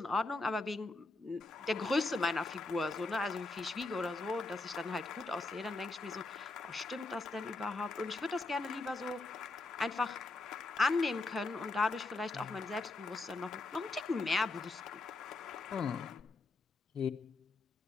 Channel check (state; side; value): quieter; right; 3.3 dB